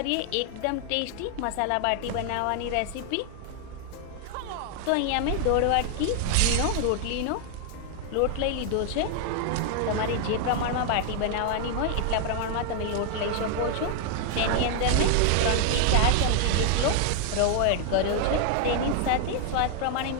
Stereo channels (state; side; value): different; both; correlation 0.00